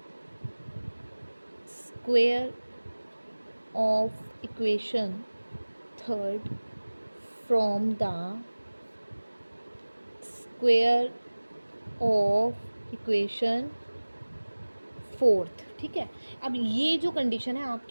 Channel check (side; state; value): both; inverted; correlation -1.00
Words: square of equation 3rd from the square of equation 4th। ठीक है, अब ये जो condition है